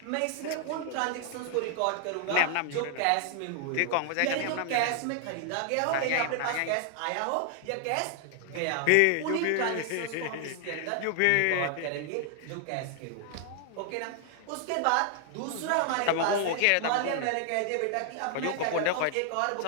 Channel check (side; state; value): both; different; correlation 0.00